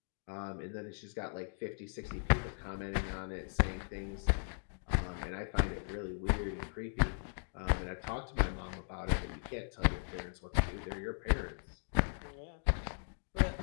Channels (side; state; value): right; silent; digital silence